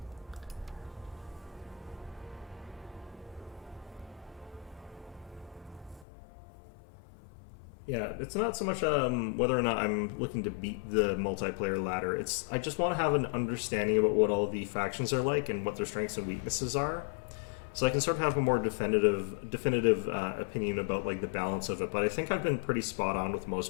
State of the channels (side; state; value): right; drops out; at 6.1 s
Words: Yeah, it's not so much whether or not I'm looking to beat the multiplayer ladder. I just want to have an understanding about what all the factions are like and what their strengths and weaknesses are, so I can sort of have a more definitive opinion about like the balance of it. But I think I've been pretty spot on with